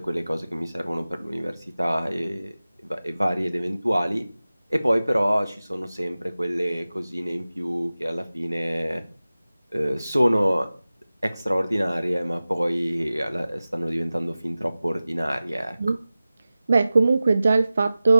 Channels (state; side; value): inverted; both; correlation -0.97